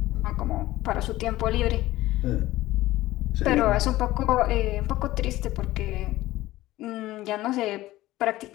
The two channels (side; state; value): right; quieter; 16.7 dB